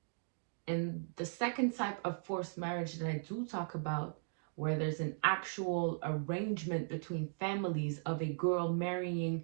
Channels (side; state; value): left; silent; digital silence